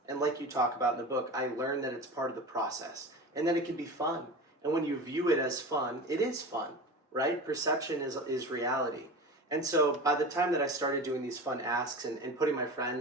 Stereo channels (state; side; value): normal; both; correlation 0.31